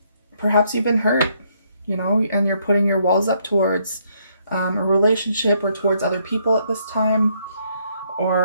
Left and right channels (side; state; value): both; inverted; correlation -0.71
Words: perhaps you've been hurt, you know, and you're putting your walls up towards a relationship or towards other people at this time.